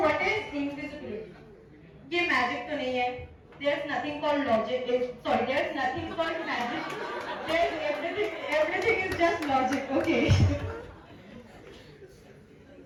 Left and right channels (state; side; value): identical; both; correlation 1.00